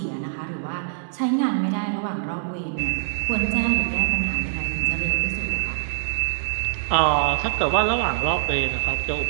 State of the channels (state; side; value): silent; left; 63 dB below the other